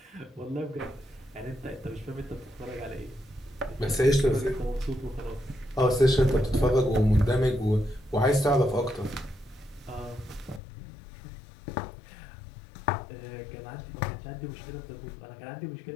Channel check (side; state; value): right; drops out; at 10.6 s